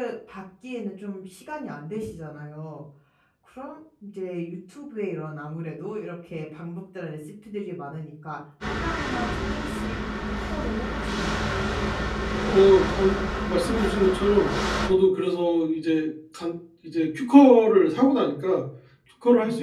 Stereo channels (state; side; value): identical; both; correlation 1.00